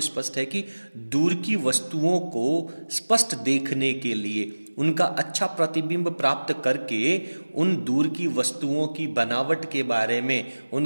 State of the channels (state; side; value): inverted; both; correlation -1.00